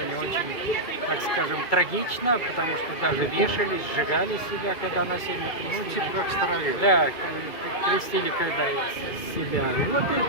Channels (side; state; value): right; late; 2.2 ms